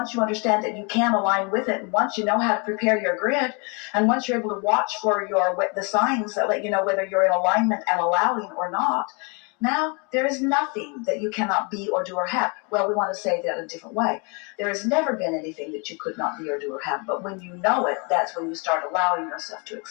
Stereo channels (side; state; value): right; quieter; 33.0 dB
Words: you understand that you can align with it, and once you know how to prepare your grid, and once you're able to watch for the signs that let you know whether you're in alignment and allowing or not, now there is nothing that you cannot be or do or have. Well, we want to say that in a different way. There has never been anything that you could not be or do or have, but when you know it, that's when you start allowing yourself to